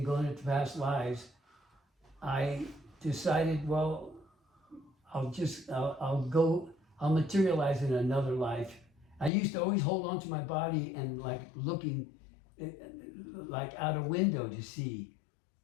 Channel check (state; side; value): drops out; right; at 9.3 s